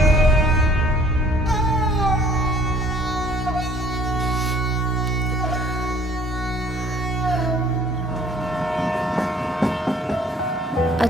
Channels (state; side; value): normal; both; correlation 0.57